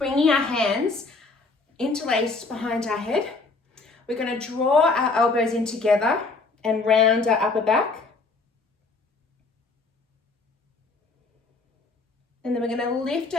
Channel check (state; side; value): quieter; right; 3.8 dB